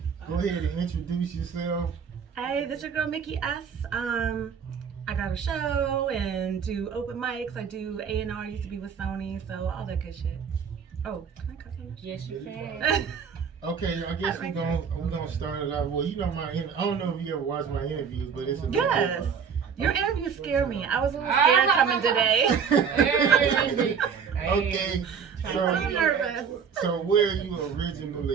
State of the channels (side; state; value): left; quieter; 6.7 dB